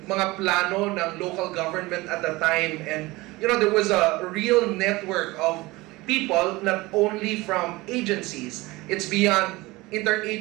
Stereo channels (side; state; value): left; quieter; 21.1 dB